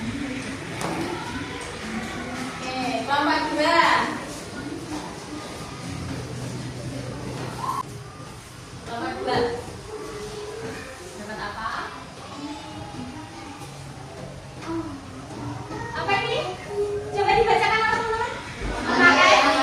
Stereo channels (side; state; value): both; identical; correlation 1.00